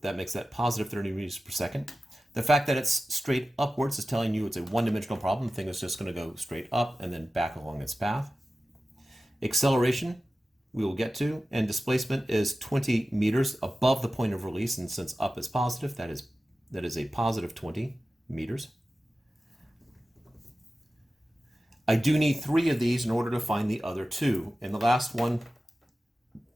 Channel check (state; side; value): normal; both; correlation 0.95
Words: that makes that positive 30 meters per second. The fact that it's straight upwards is telling you it's a one-dimensional problem. The thing is just going to go straight up and then back along its path. Acceleration, we will get to, and displacement is 20 meters above the point of release, and since up is positive, that is a positive 20 meters. I do need 3 of these in order to find the other 2, and the last one